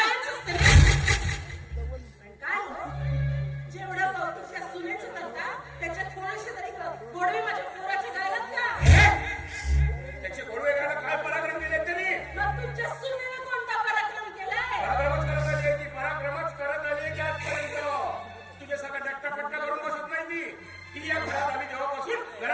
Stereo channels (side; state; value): both; identical; correlation 1.00